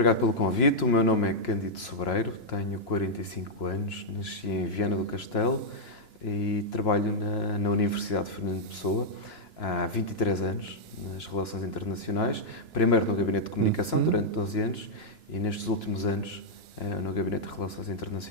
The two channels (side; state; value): right; late; 2.9 ms